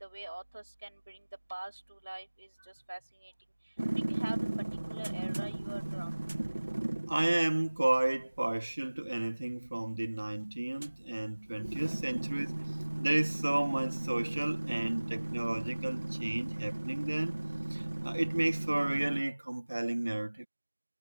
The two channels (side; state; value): both; inverted; correlation -1.00